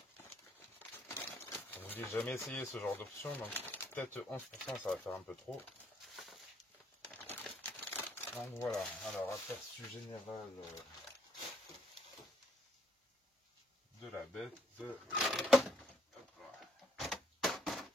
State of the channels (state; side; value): normal; both; correlation 0.69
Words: Je vous dis, j'ai jamais essayé ce genre d'option, donc peut-être 11%, ça va faire un peu trop. Donc voilà, alors aperçu général de la bête.